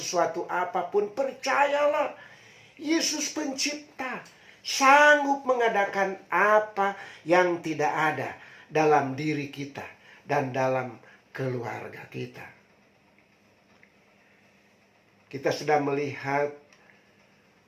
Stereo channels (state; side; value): identical; both; correlation 1.00